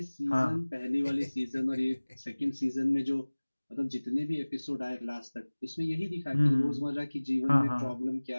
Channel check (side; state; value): both; inverted; correlation -1.00